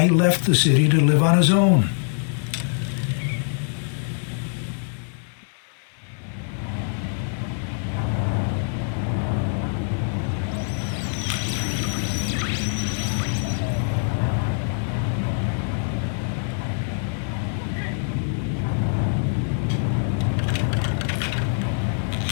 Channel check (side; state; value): right; silent; 63 dB below the other